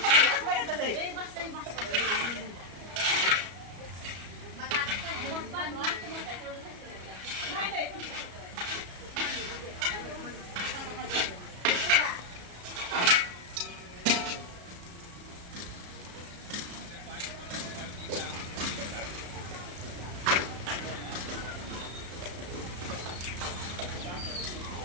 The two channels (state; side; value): late; left; 34 ms